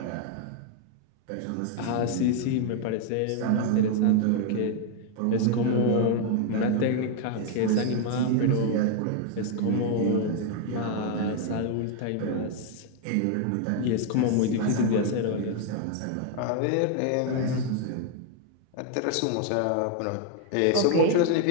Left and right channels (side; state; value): both; different; correlation 0.00